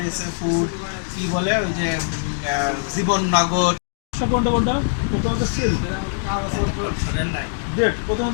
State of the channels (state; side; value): silent; right; digital silence